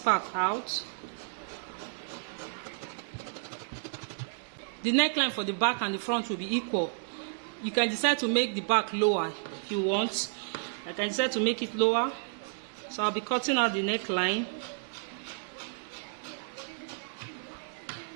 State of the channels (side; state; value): left; silent; digital silence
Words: out. The neckline for the back and the front will be equal. You can decide to make the back lower if you want. I can decide to make it lower. So I'll be cutting out the neckline.